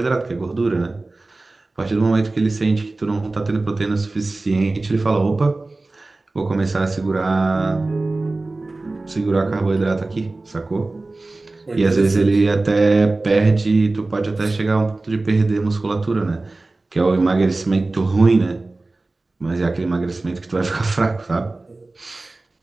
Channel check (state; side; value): quieter; left; 3.2 dB